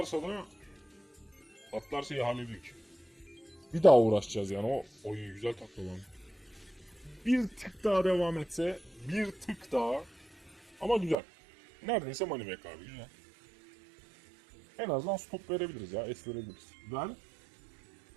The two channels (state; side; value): drops out; left; at 11.2 s